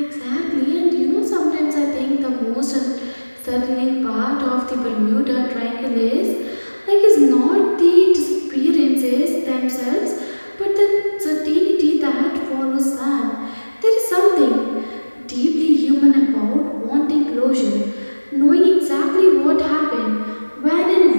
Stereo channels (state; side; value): inverted; both; correlation -1.00